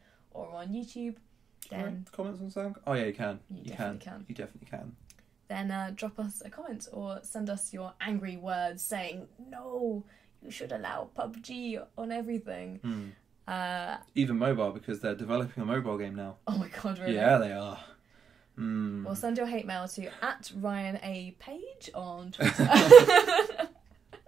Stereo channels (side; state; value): left; quieter; 6.8 dB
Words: or on YouTube, then... Comments on SoundCloud? Oh yeah, you can. You definitely can. You definitely can. Then drop us a comment or send us your angry words saying, no, you should allow PUBG on everything. Even mobile, because they're developing a mobile game now. Oh my God, really? Yeah, they are. Well, send your hate mail to @RyanAPage on Twitter.